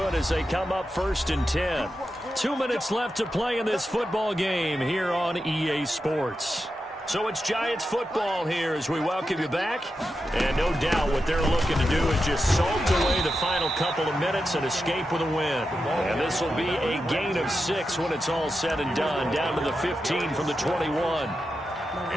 as they come up 1st and 10. 2 minutes left to play in this football game here on EA Sports. So it's Giants football here as we welcome you back. And no doubt what they're looking to do is just salt away the final couple of minutes and escape with a win. And this will be a gain of 6 when it's all said and done, down to the 15 from the 21.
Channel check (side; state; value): both; normal; correlation 0.89